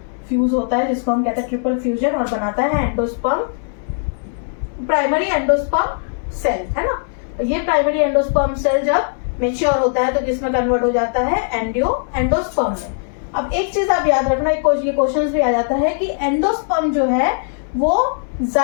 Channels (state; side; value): silent; right; 63 dB below the other